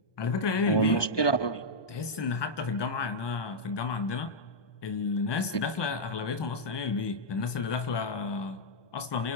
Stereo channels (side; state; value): right; late; 1.2 ms